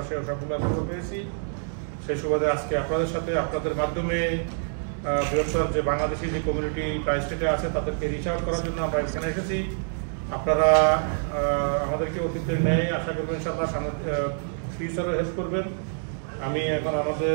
সেই সবগুলো অ্যাপ্রুভাল পেয়েছি। সেই সুবাদে আজকে আপনাদের সাথে আপনাদের মাধ্যমে বৃহত্তর যে বাংলাদেশি যে কমিউনিটি ট্রাই স্টেটে আছে তাদেরকে রিচ আউট করার জন্য আমরা এখানে এসেছি। আপনারা আমাদেরকে অতীতের ন্যায় আশা করবেন ইনশাআল্লাহ ফিউচারে হেল্প করবেন। আমি এখন আমাদের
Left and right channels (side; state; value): left; silent; digital silence